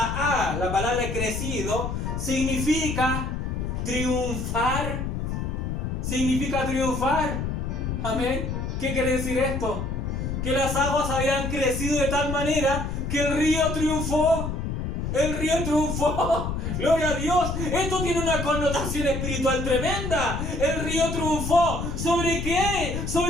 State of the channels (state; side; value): noise; left; rumble, 3 dB below the sound